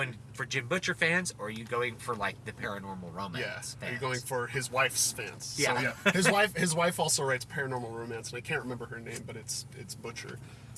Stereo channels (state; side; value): identical; both; correlation 1.00